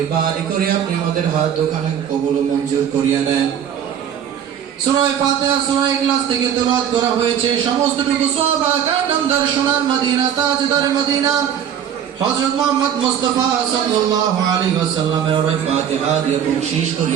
করে আপনি আমাদের হাত দুখানা কবুল ও মঞ্জুর করিয়া নেন। সূরা ফাতিহা সূরা ইখলাস থেকে তেলাওয়াত করা হয়েছে। সমস্তটুকু সাহাবা کرام দর্শনার মদিনা তাজদার মদিনা হযরত মুহাম্মদ মুস্তাফা সাল্লাল্লাহু আলাইহি ওয়াসাল্লামের ওই ফাতিহা দিয়ে বখশিশ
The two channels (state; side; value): quieter; left; 9.0 dB